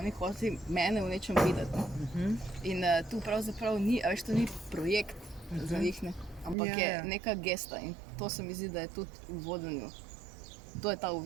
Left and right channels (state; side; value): drops out; left; at 6.6 s